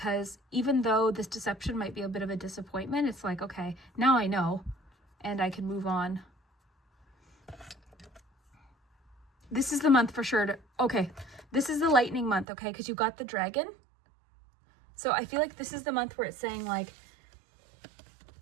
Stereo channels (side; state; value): left; drops out; at 12.5 s